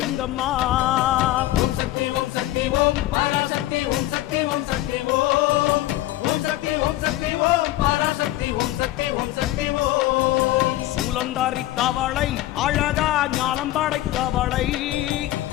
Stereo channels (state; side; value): quieter; right; 15.7 dB